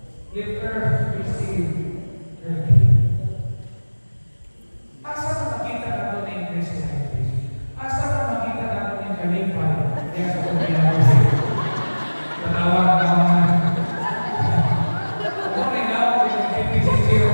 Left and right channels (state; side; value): inverted; both; correlation -1.00